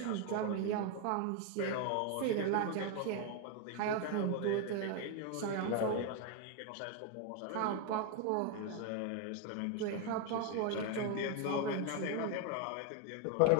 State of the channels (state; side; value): different; both; correlation 0.01